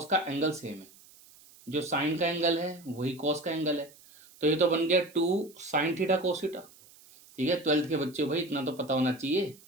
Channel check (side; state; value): right; noise; hiss, 24 dB below the sound